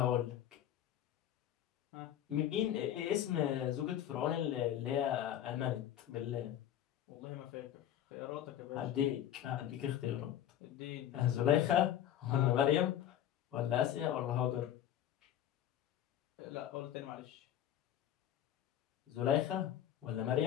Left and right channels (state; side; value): quieter; right; 11.1 dB